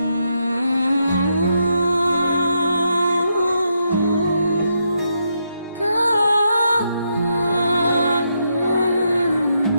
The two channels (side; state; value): both; inverted; correlation -0.80